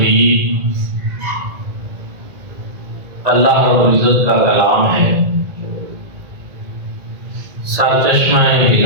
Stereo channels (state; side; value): late; left; 1.9 ms